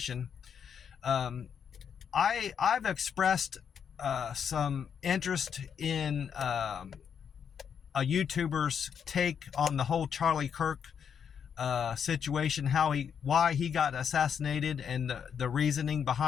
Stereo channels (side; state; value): right; quieter; 7.5 dB